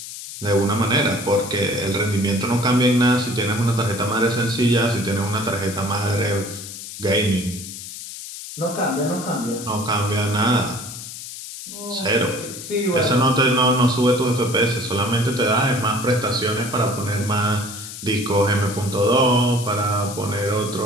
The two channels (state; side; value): noise; left; hiss, 11 dB below the sound